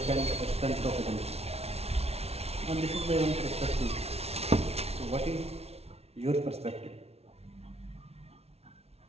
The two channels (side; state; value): left; late; 0.30 ms